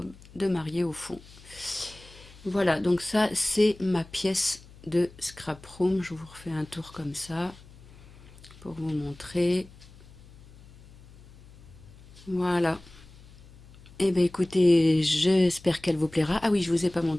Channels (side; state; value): left; noise; hum, 22 dB below the sound